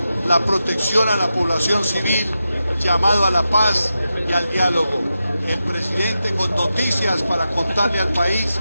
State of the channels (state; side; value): inverted; both; correlation -0.90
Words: la protección a la población civil, llamado a la paz y al diálogo. El presidente con noticias para contarle al país